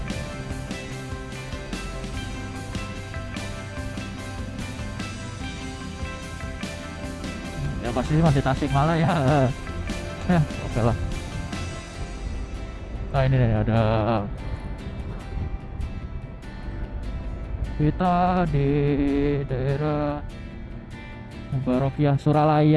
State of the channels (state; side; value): identical; both; correlation 1.00